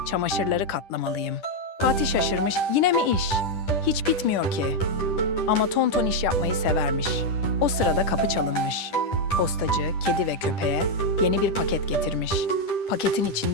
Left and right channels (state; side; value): late; right; 10 ms